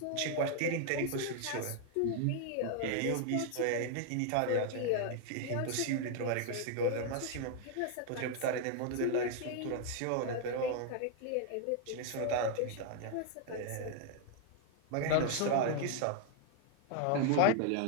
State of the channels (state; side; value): different; both; correlation 0.00